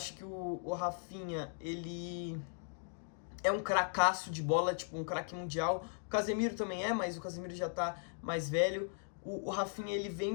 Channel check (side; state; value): right; silent; digital silence